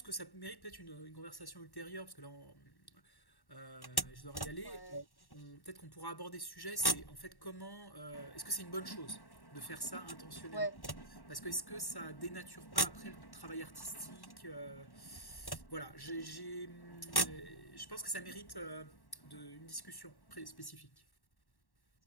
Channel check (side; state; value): right; late; 1.1 ms